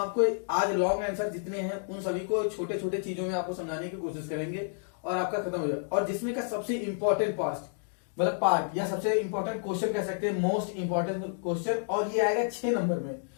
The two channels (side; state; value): right; silent; digital silence